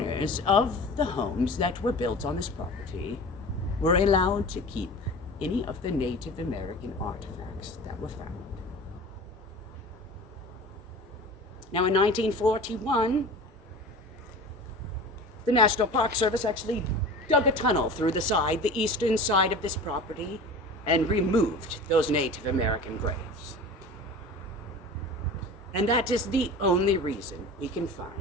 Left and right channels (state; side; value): normal; both; correlation 0.36